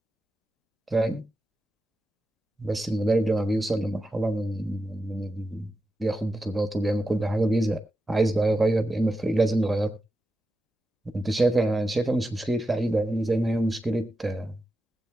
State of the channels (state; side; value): normal; both; correlation 0.90